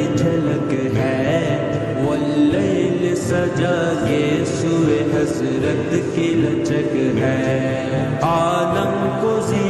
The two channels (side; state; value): both; identical; correlation 1.00